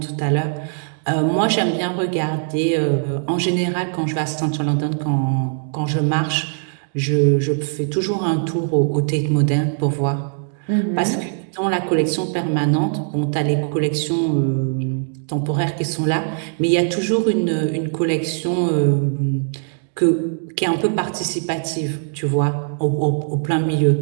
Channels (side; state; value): left; silent; digital silence